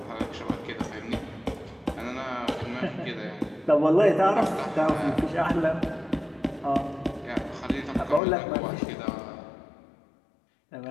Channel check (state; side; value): drops out; right; at 8.2 s